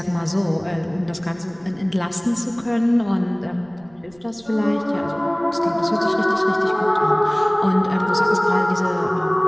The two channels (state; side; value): noise; right; rumble, 28 dB below the sound